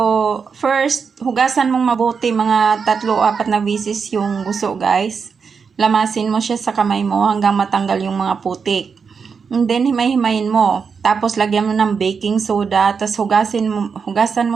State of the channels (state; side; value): quieter; left; 5.8 dB